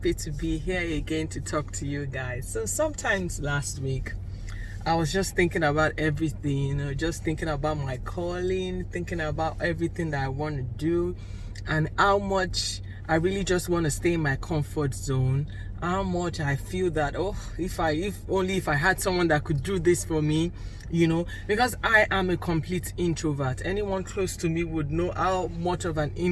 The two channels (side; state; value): both; identical; correlation 1.00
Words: to be here again to talk to you guys. So sometimes last week I was just thinking about everything, just thinking about my calling, thinking about everything that I want to do and how much I really just want to stay in my comfort zone. How much I feel that, if I had someone that could do this for me, because I am a complete introvert. Anyone close to me would know how much of an